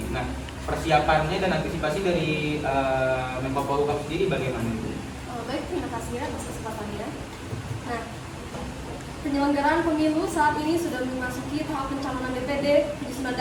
Nah, persiapannya dan antisipasi dari Menko Polhukam sendiri bagaimana Bu? Baik, terima kasih ya atas kesempatannya. Nah, penyelenggaraan pemilu saat ini sudah memasuki tahap pencalonan DPD, penyusunan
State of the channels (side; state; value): both; identical; correlation 1.00